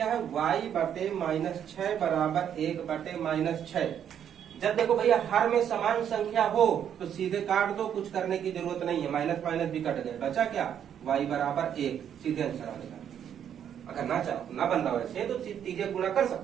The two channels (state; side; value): quieter; left; 9.1 dB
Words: है? y बटे -6 बराबर 1 बटे -6। जब देखो भैया हर में समान संख्या हो तो सीधे काट दो, कुछ करने की जरूरत नहीं है, माइनस भी कट गए, बचा क्या? y बराबर 1, सीधे आंसर आ गया। अगर ना चाहो ना बन रहा वैसे तो सीधे गुणा कर